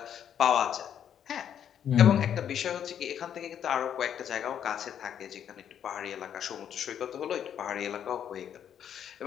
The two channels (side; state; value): right; quieter; 9.2 dB